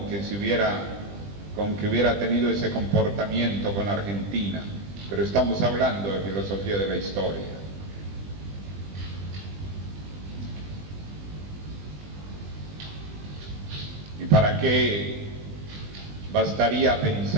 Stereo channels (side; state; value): left; late; 20 ms